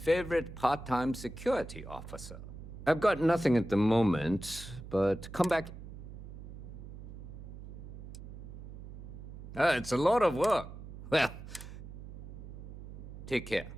part-time security officer. I've got nothing at the moment, but come back. It's a lot of work. Well, take care.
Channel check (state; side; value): noise; right; hum, 12 dB below the sound